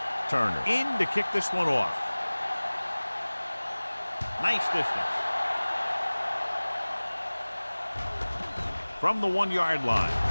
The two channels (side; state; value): both; inverted; correlation -1.00